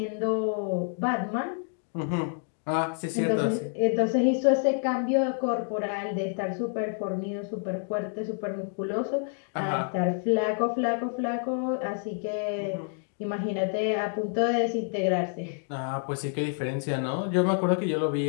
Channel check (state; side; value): silent; right; 59 dB below the other